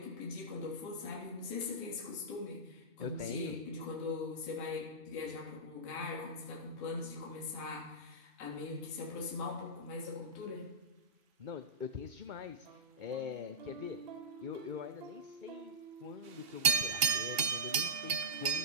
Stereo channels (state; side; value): late; left; 2.8 ms